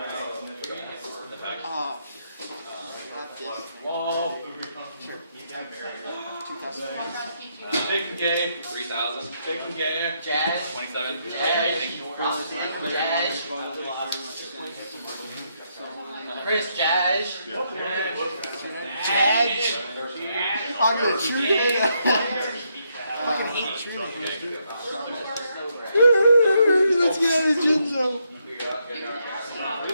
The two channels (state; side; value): inverted; both; correlation -0.77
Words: Whoa. Sure. Taking game. 3,000. Taking game. Jazz. 27. Jazz. Chris Jazz. Jazz. I'm gonna shoot it. I fucking hate shooting. Let's get out of Jinzo.